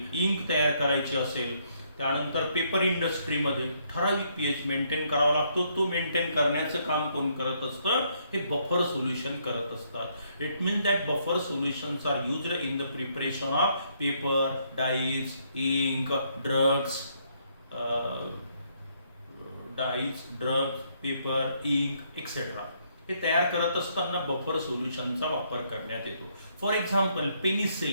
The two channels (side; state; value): both; inverted; correlation -0.72